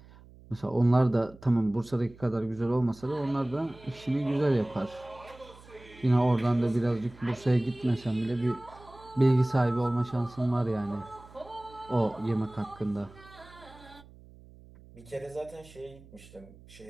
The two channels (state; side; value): noise; right; hum, 22 dB below the sound